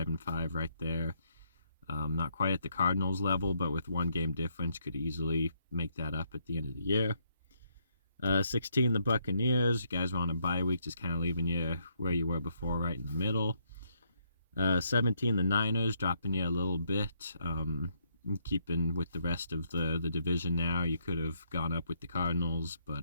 right there. Not quite at the Cardinals level, but with 1 game difference, could easily make that up at the end of the year. 16, the Buccaneers. You guys were on a bye week, just kind of leaving you where you were before, right in the middle. 17, the Niners, dropping you a little bit. Keeping with the rest of the division now. You could have gone up with the Cardinals, but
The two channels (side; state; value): both; inverted; correlation -0.74